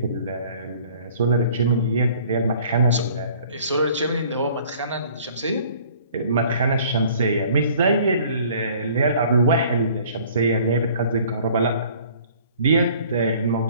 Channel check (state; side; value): inverted; both; correlation -0.53